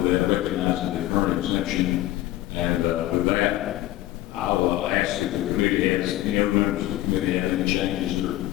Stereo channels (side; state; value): right; quieter; 15.5 dB